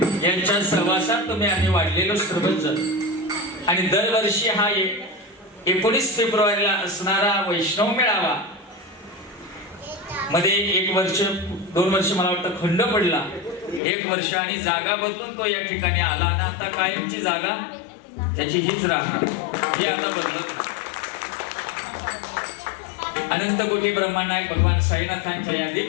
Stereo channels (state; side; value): drops out; right; at 13.8 s